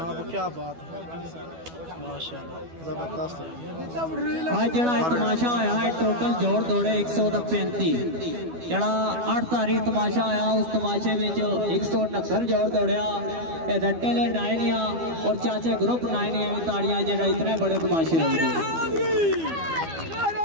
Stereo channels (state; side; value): late; left; 12 ms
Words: क्या बात है माशाल्लाह जबरदस्त है। आज जड़ा तमाशा होया है टोटल जोड़ दौड़े 135 जड़ा 8 तारीख तमाशा होया उस तमाशे में 169 जोड़ दौड़िया रट्टे ले नाइनिया और चाचे ग्रुप नाइनिया में ताड़ियां जड़ा इतने बड़े तमाशे हो गए।